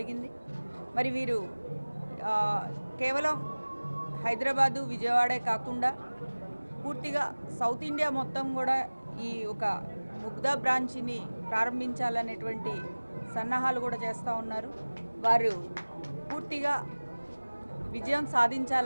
మరి వీరు కేవలం హైదరాబాదు విజయవాడే కాకుండా పూర్తిగా సౌత్ ఇండియా మొత్తం కూడా ఈ ఒక ముగ్ధా బ్రాంచ్ని ప్రారంభించాలనేటువంటి సన్నాహాలు కూడా చేస్తూ ఉన్నారు. వారు పూర్తిగా విజయం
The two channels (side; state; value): both; inverted; correlation -1.00